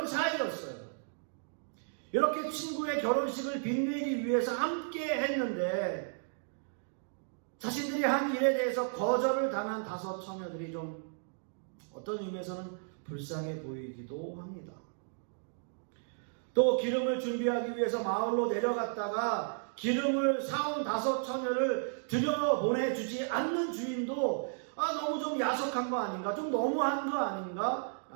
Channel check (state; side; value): silent; left; digital silence